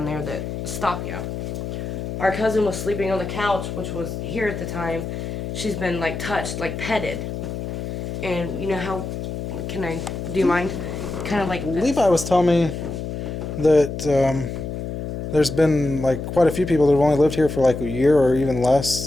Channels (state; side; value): noise; left; hum, 5 dB below the sound